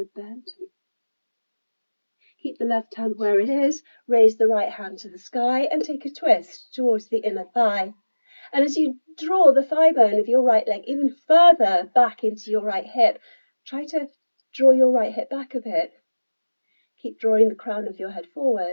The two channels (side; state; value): both; inverted; correlation -1.00